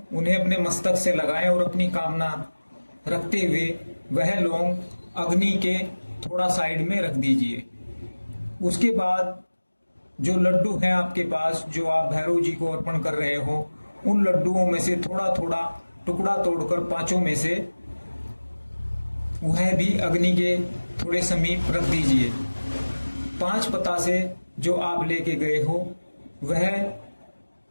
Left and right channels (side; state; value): both; inverted; correlation -1.00